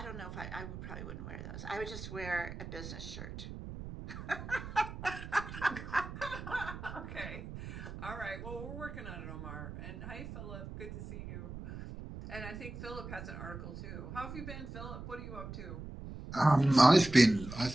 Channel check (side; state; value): right; noise; rumble, 10 dB below the sound